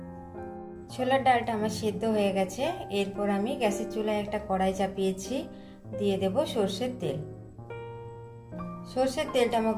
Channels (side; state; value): both; identical; correlation 1.00